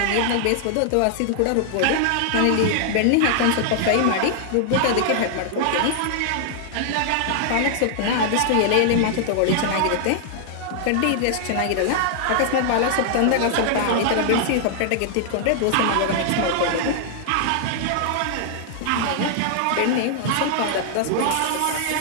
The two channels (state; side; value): different; both; correlation -0.01